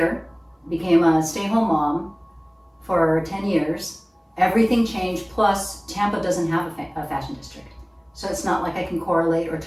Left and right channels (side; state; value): both; identical; correlation 1.00